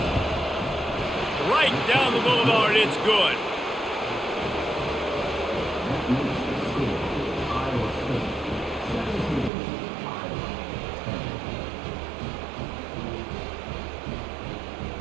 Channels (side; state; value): left; drops out; at 9.5 s